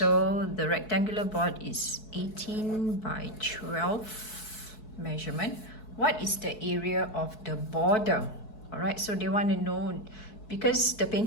the rectangular board is 18 by 12 measurement. What is the area of the border? All right, so they want to know, because the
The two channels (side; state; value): right; late; 4.6 ms